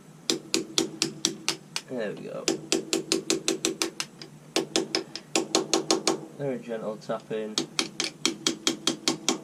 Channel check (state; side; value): identical; both; correlation 1.00